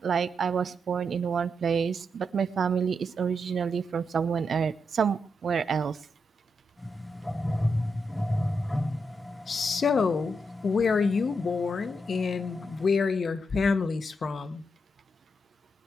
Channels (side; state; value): both; normal; correlation 0.83